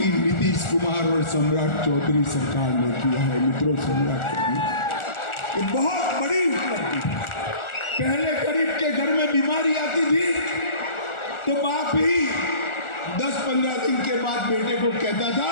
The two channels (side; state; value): right; late; 1.4 ms